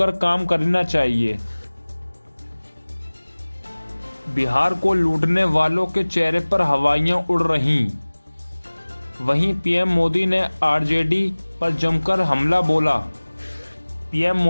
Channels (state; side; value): inverted; both; correlation -1.00